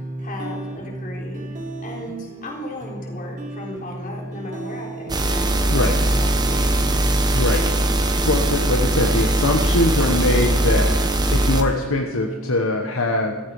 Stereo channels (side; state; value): both; normal; correlation 0.53